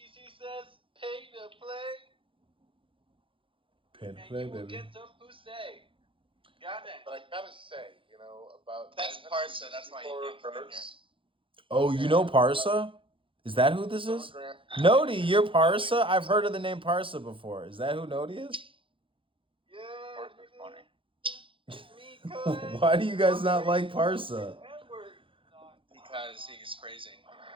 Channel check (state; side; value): late; left; 0.25 ms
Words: says pay to play. Pay to and play, you will baby. get some pussy. Goddamn. But I gotta say, about That's Parsa. That's why you can't come in here. Oh, you know Parsa? Is that who this is? Nodi, you're Parsa? I've heard of the name Parsa before. Is that who Nodi is? Why do you guys not like Parsa? Because he's crazy.